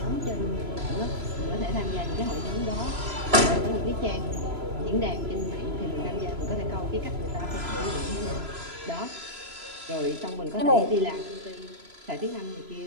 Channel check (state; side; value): late; left; 3.0 ms